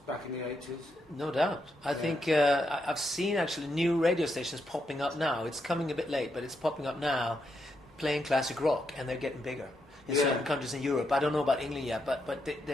back in the 80s? No doubt. I think I've seen actually new radio stations popping up now. It's coming a bit late, but it's popping up now, playing classic rock, and they're getting bigger in certain countries in Europe. I don't know about England yet, but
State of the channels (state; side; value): normal; both; correlation 0.81